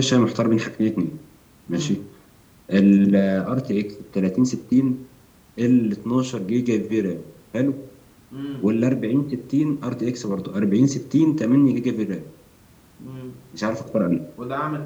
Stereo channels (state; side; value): identical; both; correlation 1.00